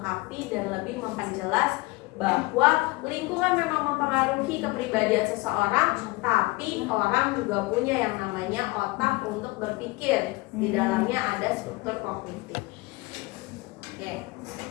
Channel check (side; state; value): right; quieter; 23.7 dB